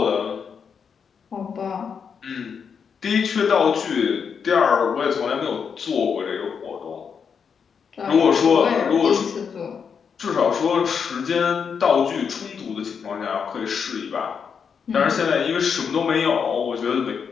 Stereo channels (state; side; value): quieter; right; 6.5 dB